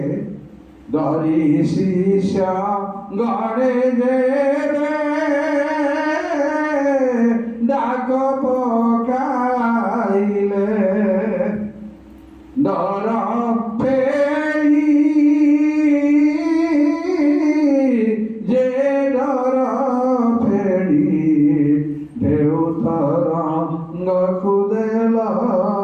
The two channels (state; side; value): identical; both; correlation 1.00